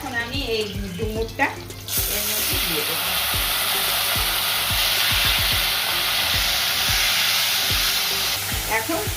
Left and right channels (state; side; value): identical; both; correlation 1.00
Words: আমি এই ডুমুরটা এর মধ্যে দিয়ে দেবো। এখন